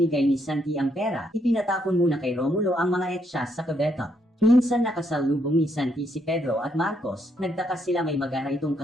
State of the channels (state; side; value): normal; both; correlation 0.74